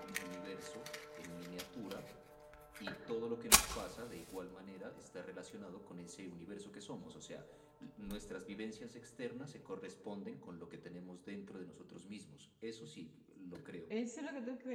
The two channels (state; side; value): identical; both; correlation 1.00